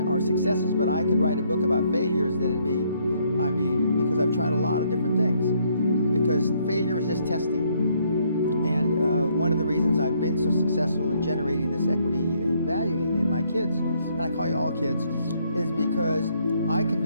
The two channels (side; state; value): both; inverted; correlation -0.69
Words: are successes, but I could write a book about failures that'd be, because I've tried a lot of different things, because failure is just testing. And one of the reasons I've been so successful in generating this equity and value in my kids, and I call you all kids, is because I